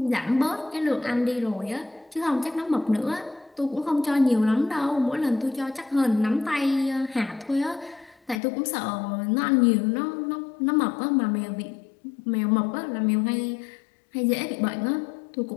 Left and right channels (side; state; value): right; drops out; at 8.4 s